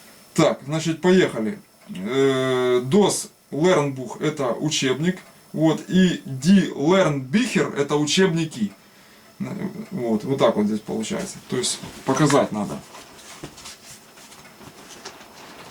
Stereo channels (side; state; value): both; identical; correlation 1.00